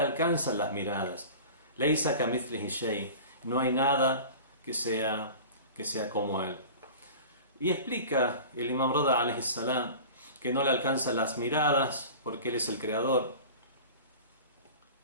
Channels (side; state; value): both; inverted; correlation -0.37